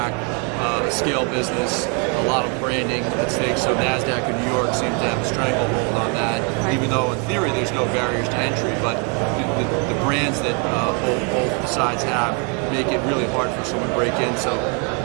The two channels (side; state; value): left; quieter; 36.6 dB